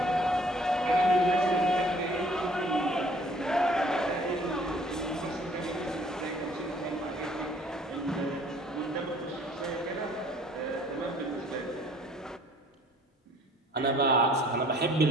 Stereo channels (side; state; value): both; normal; correlation 0.57